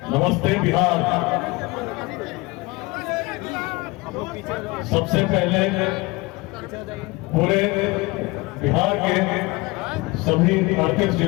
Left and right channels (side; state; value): right; quieter; 23.8 dB